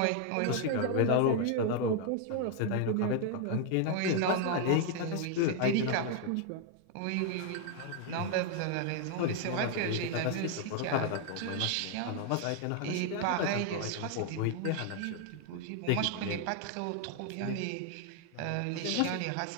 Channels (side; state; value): both; different; correlation 0.00